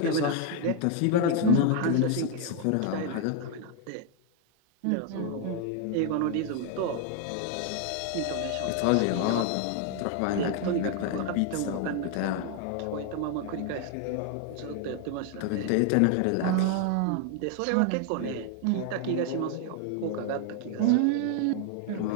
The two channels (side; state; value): both; different; correlation 0.00